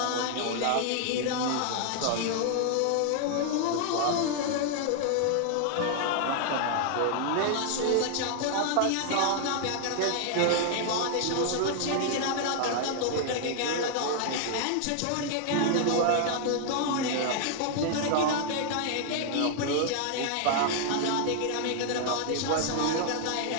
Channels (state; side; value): different; both; correlation 0.00